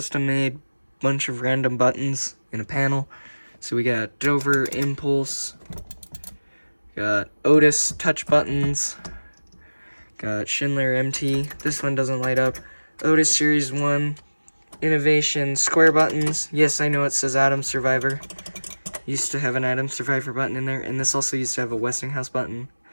bunch of random buttons in a panel. So we got Dover Impulse, got Otis touch buttons, got Schindler MT, this one doesn't light up, Otis Series 1, Innovation square buttons. Yes, I know it says Atom Survivor. Used to have an Atom Survivor button in there, and this also used to have a Westinghouse button,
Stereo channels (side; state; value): both; inverted; correlation -1.00